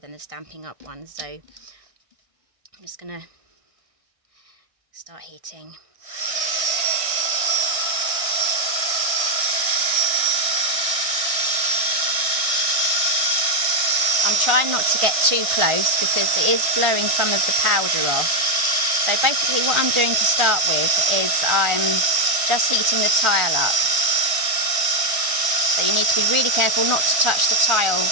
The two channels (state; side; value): late; left; 1.6 ms